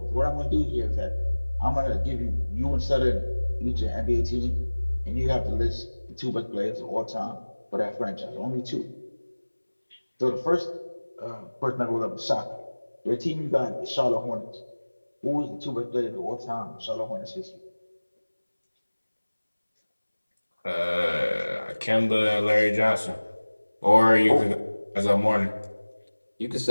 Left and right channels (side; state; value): both; inverted; correlation -1.00